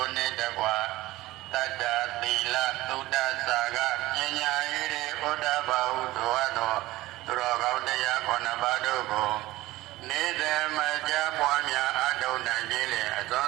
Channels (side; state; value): left; quieter; 17.8 dB